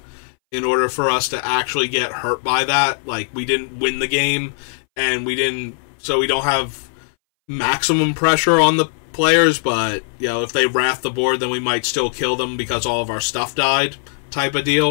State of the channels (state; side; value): silent; right; 63 dB below the other